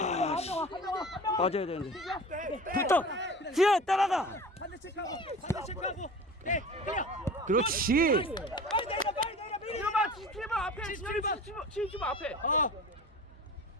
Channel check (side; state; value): both; normal; correlation 0.38